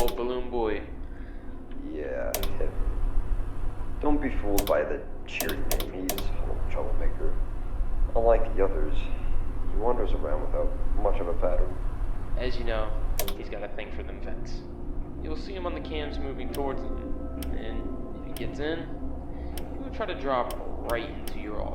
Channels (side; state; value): both; identical; correlation 1.00